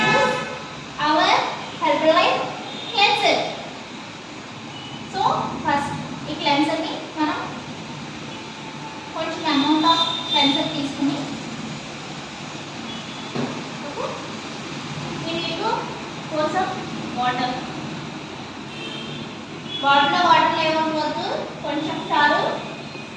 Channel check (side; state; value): both; identical; correlation 1.00